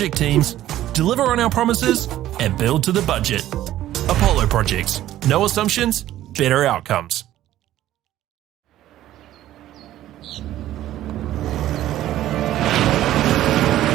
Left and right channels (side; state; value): left; quieter; 13.5 dB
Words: teams, deliver on our promises, and build to the budget. Apollo Projects. No assumptions, better outcomes.